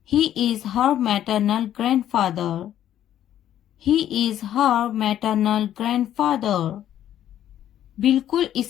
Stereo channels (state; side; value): quieter; right; 11.4 dB